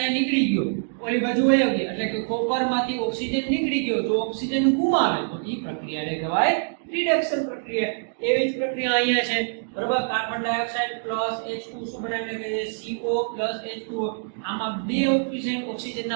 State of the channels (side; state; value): left; silent; digital silence